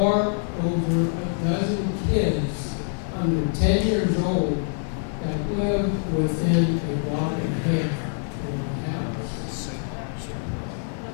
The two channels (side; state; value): right; silent; 62 dB below the other